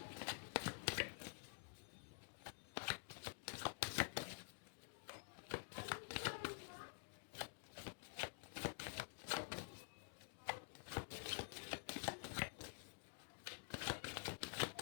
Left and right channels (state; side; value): silent; right; digital silence